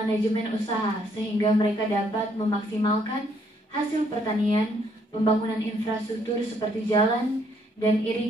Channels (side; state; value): both; normal; correlation 0.69